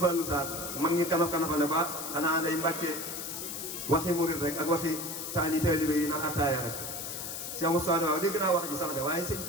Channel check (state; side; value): noise; left; hiss, 6 dB below the sound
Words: Sarr mag ñi kanaf kanafale ba xanaa day Mbàkke waxi murit rek ak waxi taalibe yi naan attaaya rek Cheikh Moustapha waaw dégg naa wax ji sax de waaye sëñ